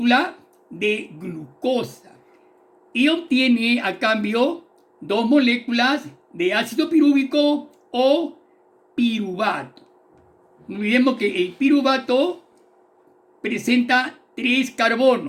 de glucosa y obtiene a cambio 2 moléculas de ácido pirúvico o piruvato. No olvidemos que el piruvato presenta 3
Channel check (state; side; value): identical; both; correlation 1.00